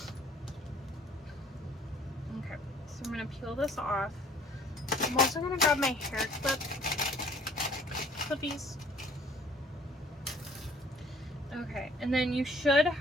Okay, so I'm going to peel this off. I'm also going to grab my hair clippies. Okay, and then you should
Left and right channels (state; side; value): normal; both; correlation 0.56